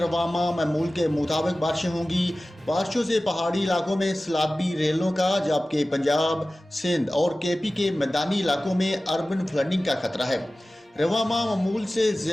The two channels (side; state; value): both; normal; correlation 0.96